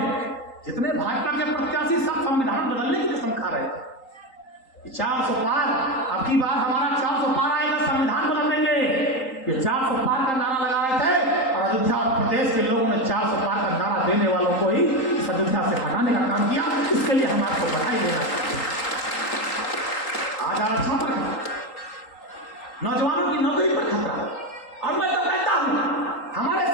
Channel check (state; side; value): late; right; 3.8 ms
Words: जितने भाजपा के प्रत्याशी सब संविधान बदलने की कसम खा रहे थे, 400 पार, अब की बार हमारा 400 पार आएगा, संविधान बदल देंगे, ये 400 पार का नारा लगा रहे थे और अयोध्या और प्रदेश के लोगों ने 400 पार का नारा देने वालों को ही इस अयोध्या से हटाने का काम किया। इसके लिए हम आपको बधाई देना चाहते हैं। आज आरक्षण पर नौजवानों की नौकरी पर खतरा, और मैं तो कहता हूं हमारे